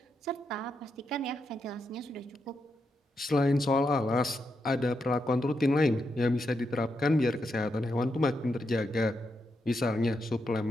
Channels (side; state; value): both; normal; correlation 0.84